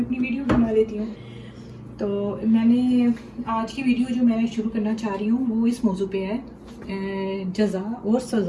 अपनी वीडियो बना लेती हूँ। तो मैंने आज की वीडियो जो मैं शुरू करना चाह रही हूँ वो इस मौजू पे है, जज़ा और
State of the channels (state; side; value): identical; both; correlation 1.00